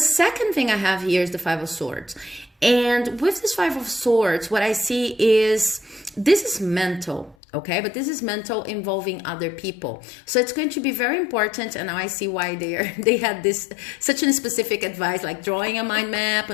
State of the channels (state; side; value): drops out; right; at 7.4 s